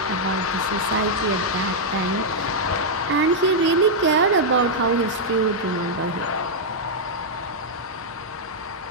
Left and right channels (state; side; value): normal; both; correlation -0.05